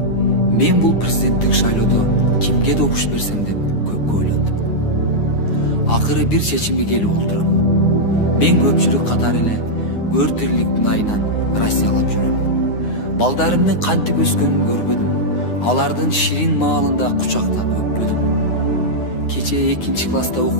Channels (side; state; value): right; late; 9.7 ms